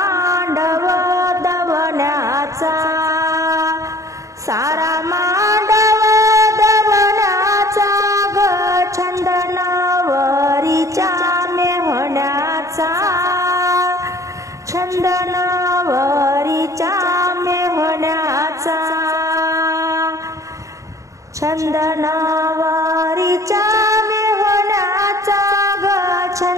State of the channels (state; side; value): late; left; 0.15 ms